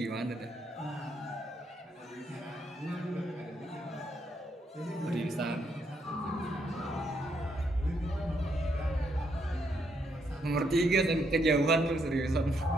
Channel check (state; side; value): normal; both; correlation 0.76